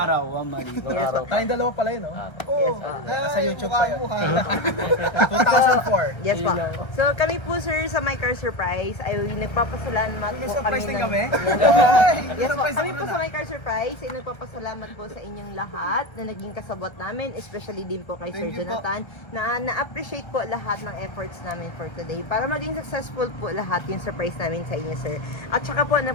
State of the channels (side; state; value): right; late; 1.3 ms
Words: one mali. Tayong dalawa pala yun, no? Oo. Nasa YouTube pa yun. Mukha. 2004. Yes po. So kami po, sir, sa My Car Surprise ay nagpapasalamat May po surprise kami din ng- kami? Yes po. Kami po sa My Car Surprise ay nagpapasalamat po sa inyong lahat na naging kasabot namin, especially din po kay Sir Thank you po. Jonathan, na na-appreciate po lahat ng efforts namin for today para maging successful po lahat yung surprise namin sa inyo, sir. At saka po,